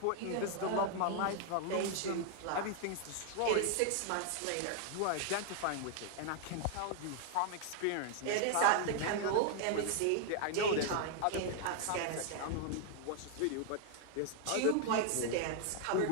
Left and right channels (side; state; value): both; different; correlation 0.00